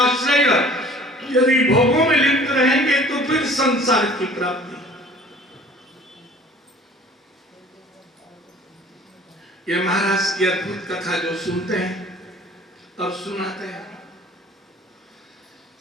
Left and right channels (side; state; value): both; normal; correlation 0.49